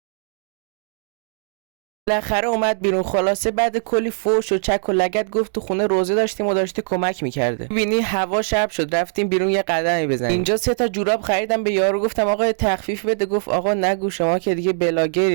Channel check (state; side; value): silent; left; digital silence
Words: بالاخره اومد بیرون. خلاصه بعد کلی فوش و چک و لگد گفت تو خونه روزه داشتیم و داشته کمک میکرده. ببینی هوا شب شد، رفتیم بیرون یه قدمی بزنیم. اینجا 3 تا جوراب خریدم به یارو، گفتم آقا تخفیف بده. گفت آقا نگو شما که دیگه